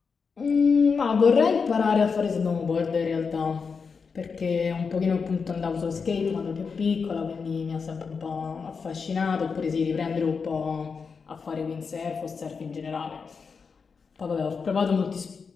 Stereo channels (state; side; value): quieter; right; 5.4 dB